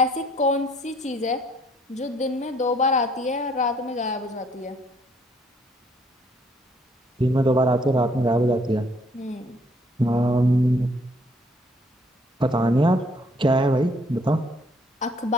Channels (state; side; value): normal; both; correlation 0.64